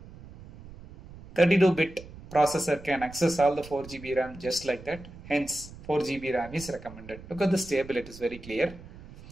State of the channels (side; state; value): right; noise; rumble, 17 dB below the sound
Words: 32-bit processor can access all the 4 GB RAM just like that. Hence 4 GB RAM is recommended. Look at this table, it is very clear.